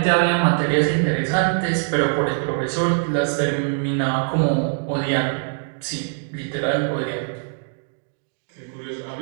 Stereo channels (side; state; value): left; silent; digital silence